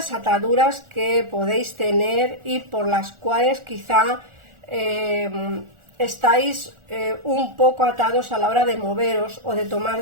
ataduras que podéis tener y por las cuales quizá estáis un poco atados a la hora de moveros o de tomar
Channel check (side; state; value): left; late; 1.4 ms